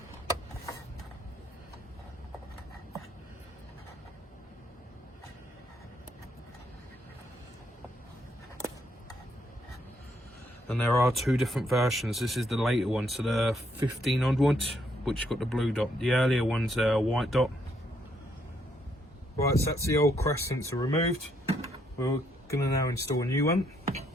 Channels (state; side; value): normal; both; correlation 0.73